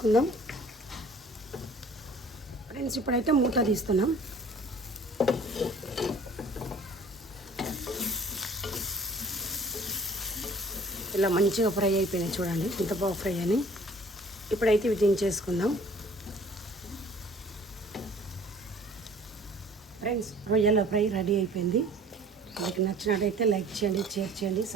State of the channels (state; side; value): normal; both; correlation 0.51